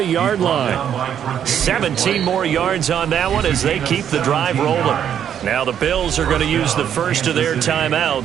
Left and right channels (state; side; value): quieter; left; 9.2 dB